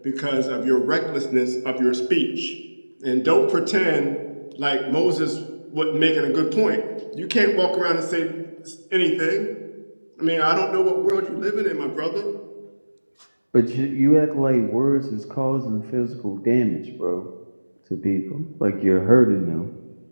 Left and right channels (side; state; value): both; inverted; correlation -1.00